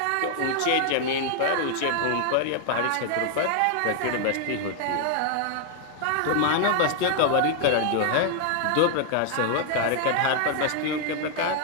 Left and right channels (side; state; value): both; different; correlation 0.00